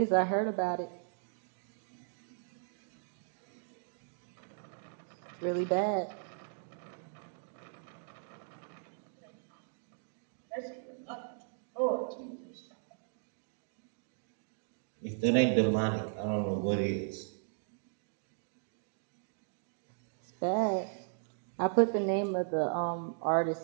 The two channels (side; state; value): left; silent; digital silence